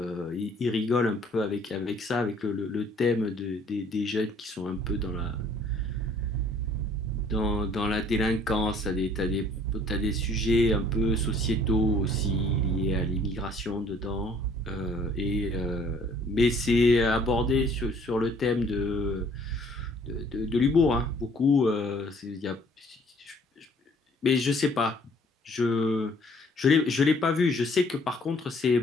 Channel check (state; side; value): normal; both; correlation 0.58